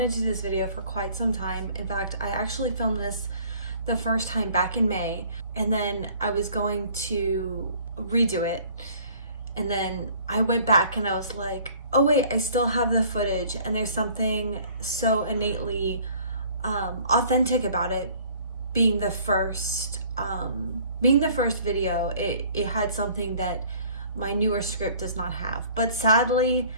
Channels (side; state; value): both; inverted; correlation -0.54